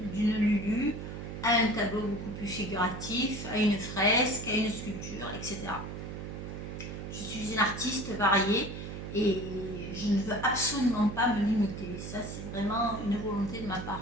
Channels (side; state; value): right; noise; hum, 8 dB below the sound